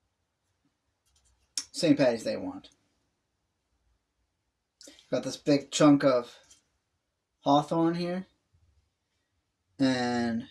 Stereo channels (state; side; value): identical; both; correlation 1.00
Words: St. Paddy's Day wand. Got this big chunk of Hawthorn here, and